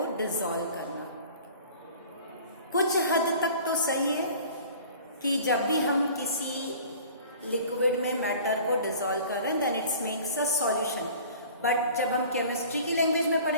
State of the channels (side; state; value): both; inverted; correlation -0.45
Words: डिसॉल्व करना। कुछ हद तक तो सही है कि जब भी हम किसी लिक्विड में मैटर को डिसॉल्व कर रहे हैं then it's makes a solution. But जब हम केमिस्ट्री की लैंग्वेज में